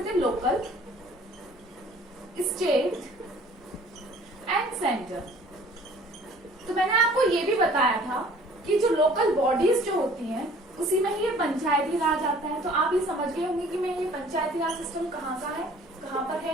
थे? Local, state and centre. तो मैंने आपको ये भी बताया था कि जो लोकल बॉडीज जो होती हैं उसी में ही ये पंचायती राज आता है. तो आप ये समझ गए होंगे कि मैं ये पंचायती राज सिस्टम कहाँ का है, कहाँ पर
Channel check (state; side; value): normal; both; correlation 0.52